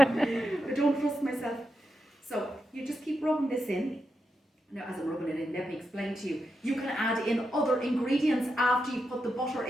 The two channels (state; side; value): normal; both; correlation 0.86